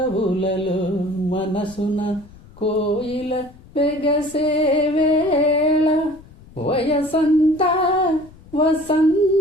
మనసున కోయిల వెగసే వేళ వయసంత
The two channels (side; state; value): left; noise; rumble, 22 dB below the sound